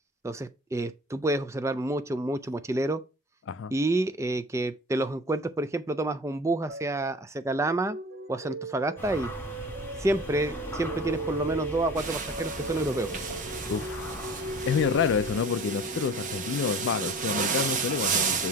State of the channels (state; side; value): normal; both; correlation 0.42